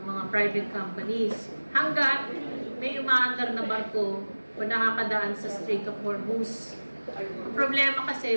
mga private companies. Hanggat may umaandar na barko o nakakadaan sa Strait of Hormuz. Ang problema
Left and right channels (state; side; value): inverted; both; correlation -1.00